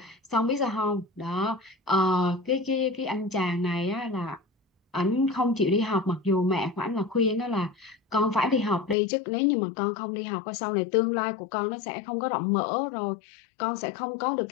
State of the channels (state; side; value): drops out; right; at 9.0 s